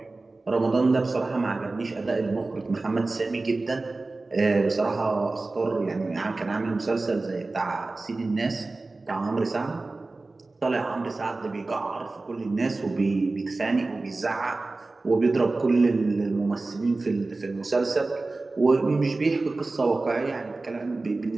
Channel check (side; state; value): left; quieter; 3.3 dB